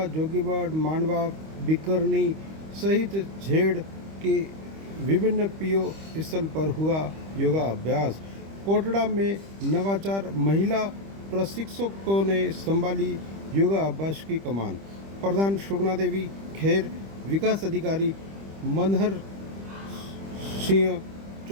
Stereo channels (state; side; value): late; left; 25 ms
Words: जोगीबाड़, मांडवा, बिकरनी सहित झेड़ के विभिन्न पीओ स्थल पर हुआ योगा अभ्यास। कोटड़ा में नवाचार महिला प्रशिक्षकों ने संभाली योगा अभ्यास की कमान। प्रधान सुगना देवी खेर, विकास अधिकारी मनहर सिंह